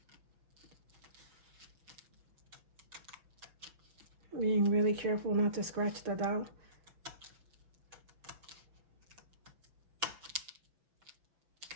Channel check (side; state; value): left; late; 6.1 ms